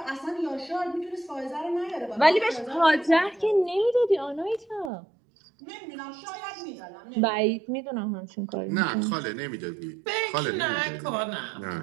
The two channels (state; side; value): drops out; left; at 4.9 s